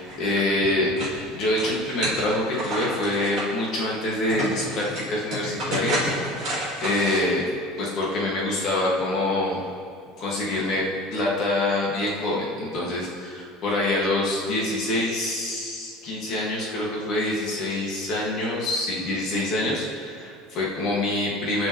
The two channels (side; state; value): both; normal; correlation 0.39